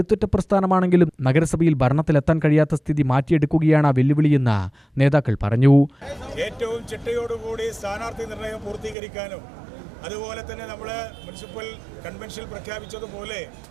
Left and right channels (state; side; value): drops out; left; at 9.0 s